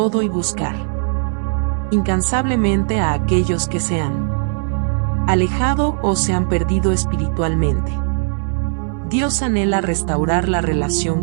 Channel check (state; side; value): silent; left; 67 dB below the other